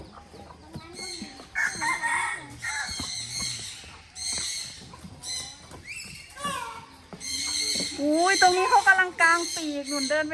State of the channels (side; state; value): both; identical; correlation 1.00